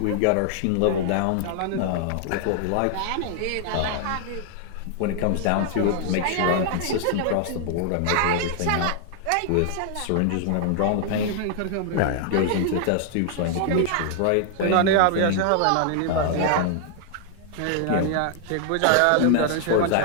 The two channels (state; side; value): different; both; correlation 0.00